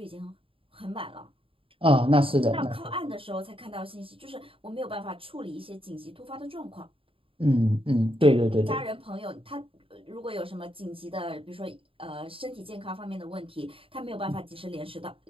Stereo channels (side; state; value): left; late; 0.26 ms